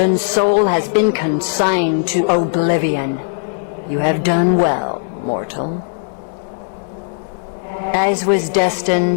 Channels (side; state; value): right; silent; digital silence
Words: soul has been consigned to oblivion. You have done well, mortal. As was